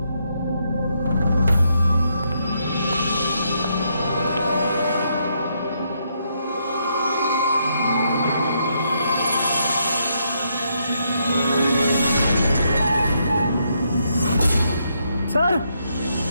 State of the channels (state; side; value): inverted; both; correlation -0.77